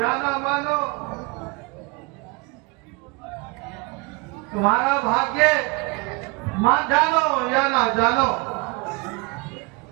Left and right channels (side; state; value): left; quieter; 27.4 dB